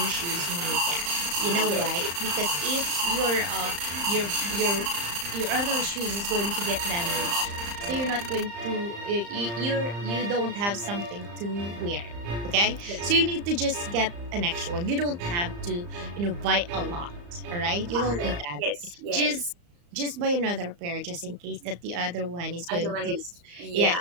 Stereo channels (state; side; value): late; left; 35 ms